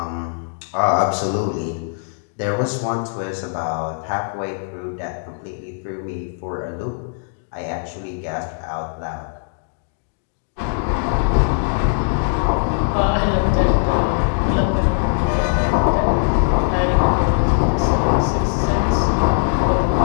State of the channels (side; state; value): right; silent; digital silence